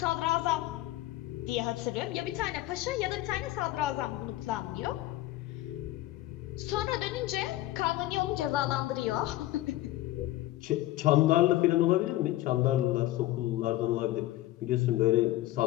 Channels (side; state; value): right; quieter; 16.0 dB